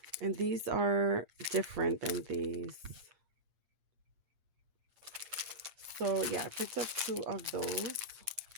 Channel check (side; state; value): left; late; 8.6 ms